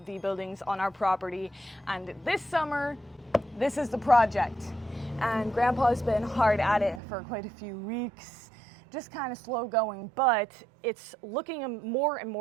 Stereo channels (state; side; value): drops out; left; at 7.0 s